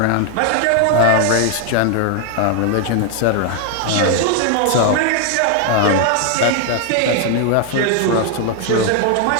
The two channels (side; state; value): both; different; correlation 0.00